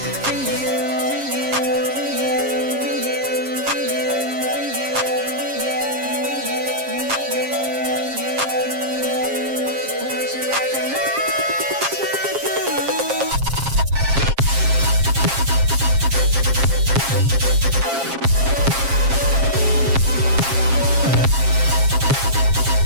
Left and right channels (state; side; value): late; left; 7.4 ms